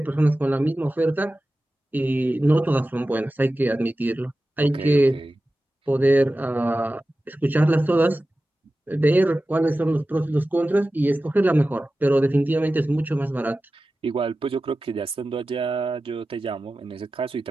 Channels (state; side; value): normal; both; correlation 0.95